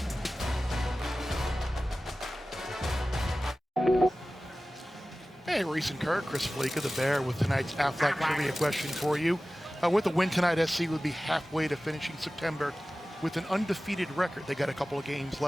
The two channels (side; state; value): both; normal; correlation 0.96